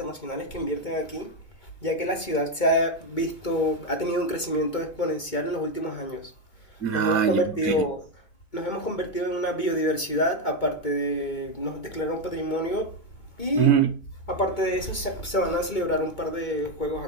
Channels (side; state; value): right; late; 2.2 ms